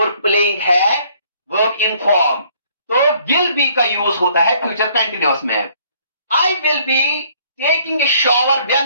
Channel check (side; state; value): both; inverted; correlation -0.62